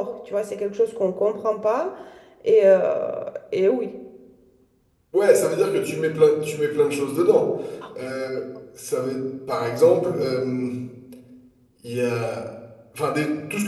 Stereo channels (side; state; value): both; identical; correlation 1.00